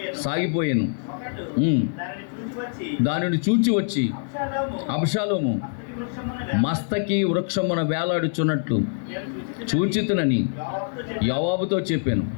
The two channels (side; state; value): right; silent; digital silence